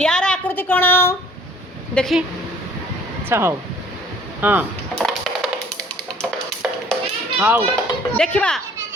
आकृति कौन देखी अच्छा हौ हाँ हौ देखा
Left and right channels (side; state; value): both; normal; correlation 0.54